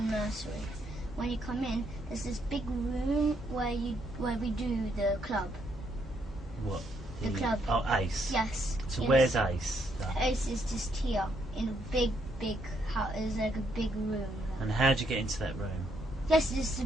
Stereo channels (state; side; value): normal; both; correlation 0.74